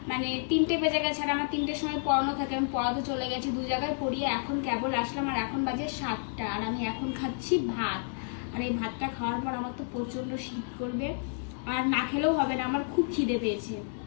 মানে 3টে বেজে গেছে। আর আমার 3টের সময় পড়ানো থাকে, আমি পড়াতে চলে গেছি, 2 জায়গায় পড়িয়ে এখন কেবল আসলাম। আর এখন বাজে 7টা, আর আমি এখন খাচ্ছি ভাত। আর এই ভাতটা খাওয়ার পর আমার তো প্রচন্ড শীত করবে, আর না খেলেও হবে না, আমার খুব খিদে পেয়েছে।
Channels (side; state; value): right; silent; 58 dB below the other